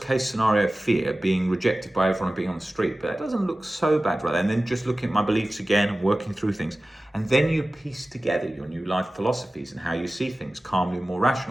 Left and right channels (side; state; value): both; normal; correlation 0.96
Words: case scenario fear, being rejected by everyone and being on the street, but that doesn't look so bad, right? And then just looking at my beliefs again and working through things. And then you piece together your new life philosophies and how you see things calmly, more